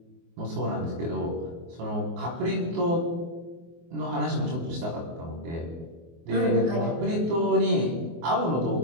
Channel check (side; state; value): left; late; 24 ms